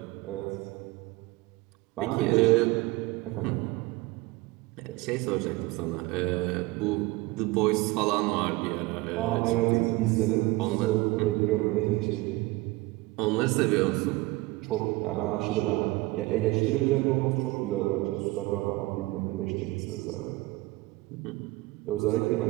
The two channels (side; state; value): left; quieter; 21.0 dB